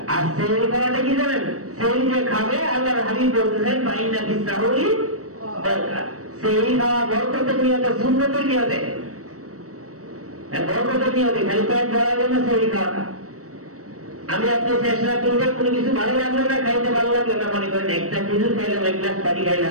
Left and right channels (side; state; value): left; late; 0.65 ms